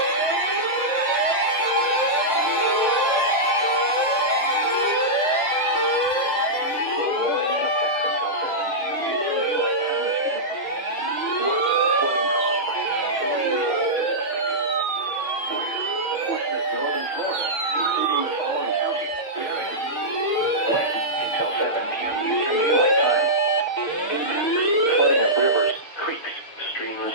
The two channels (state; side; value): late; right; 6.7 ms